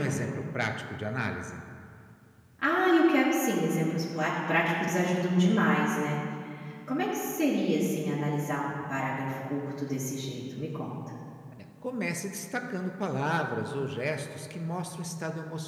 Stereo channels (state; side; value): identical; both; correlation 1.00